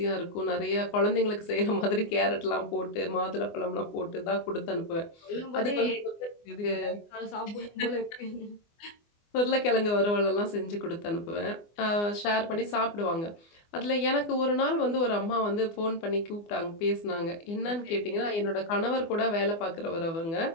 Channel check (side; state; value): right; late; 24 ms